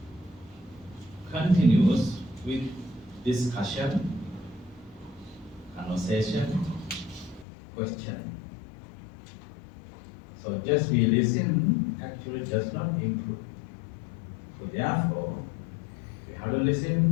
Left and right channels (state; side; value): drops out; right; at 7.5 s